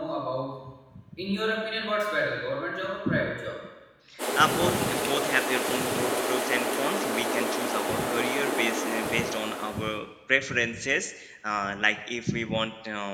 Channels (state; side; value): identical; both; correlation 1.00